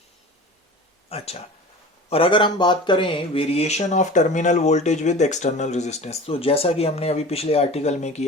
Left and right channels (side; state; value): both; normal; correlation 0.38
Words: अच्छा, और अगर हम बात करें variation of terminal voltage with external resistance, तो जैसा कि हमने अभी पिछले आर्टिकल में